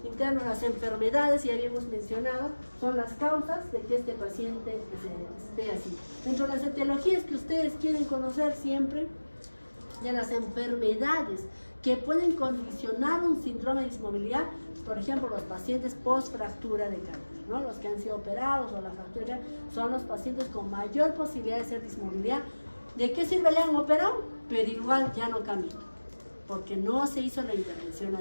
internos, las enfermedades, ya habíamos mencionado, son las causas de que este paciente esté así. Dentro de las etiologías que ustedes quieren conocer siempre, de las enfermedades que pueden condicionar un síndrome de dismovilidad, por ejemplo, los pacientes post-fractura de cadera, ¿no? Los que han sido operados o la fractura son los pacientes con mayor posibilidad de ser dismovilidad. ¿De qué sirve? Le han operado, pero igual ya no camina, porque no se hizo la intervención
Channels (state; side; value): inverted; both; correlation -1.00